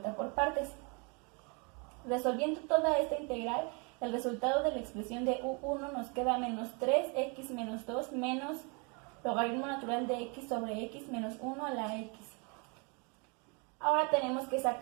por partes. Resolviendo toda esta integral, el resultado de la expresión de u1 nos queda menos 3x menos 2 menos logaritmo natural de x sobre x menos 1 a la x. Ahora tenemos que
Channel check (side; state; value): left; quieter; 33.3 dB